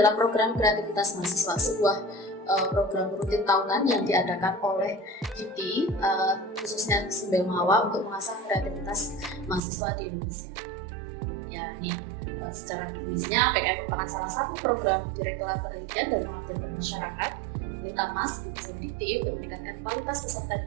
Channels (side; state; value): left; drops out; at 9.6 s